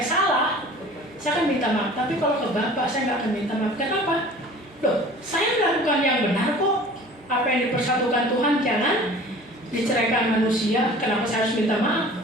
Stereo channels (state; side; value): normal; both; correlation 0.45